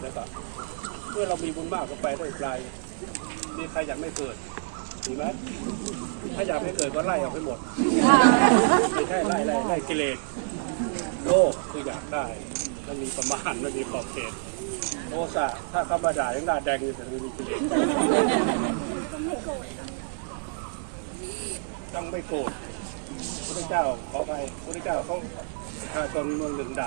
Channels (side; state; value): left; silent; digital silence